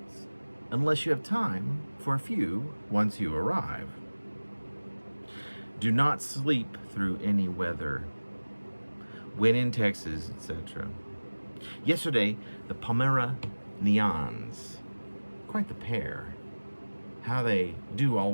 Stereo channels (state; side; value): inverted; both; correlation -1.00